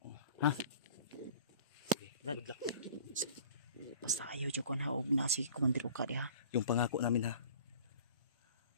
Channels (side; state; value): both; inverted; correlation -0.47